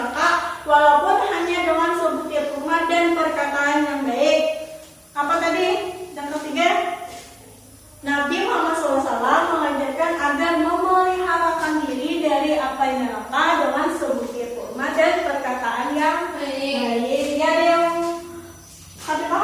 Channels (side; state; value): both; identical; correlation 1.00